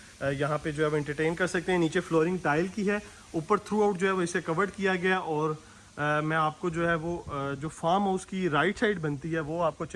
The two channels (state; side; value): identical; both; correlation 1.00